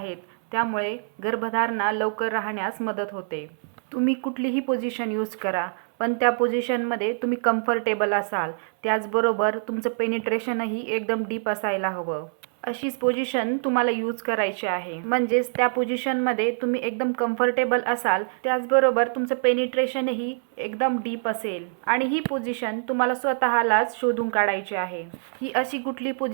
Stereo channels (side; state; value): left; silent; 62 dB below the other